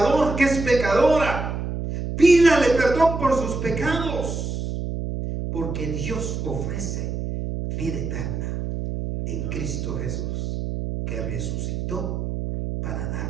que es pecadora. Pídale perdón por sus pecados. Porque Dios ofrece vida eterna en Cristo Jesús, que resucitó para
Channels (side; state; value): right; noise; hum, 4 dB below the sound